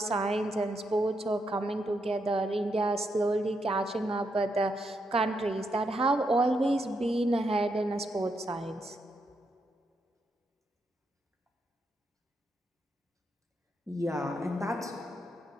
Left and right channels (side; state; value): both; normal; correlation 0.81